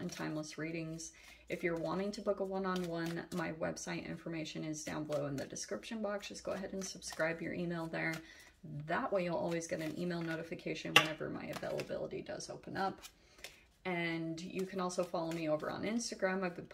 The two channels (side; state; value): both; identical; correlation 1.00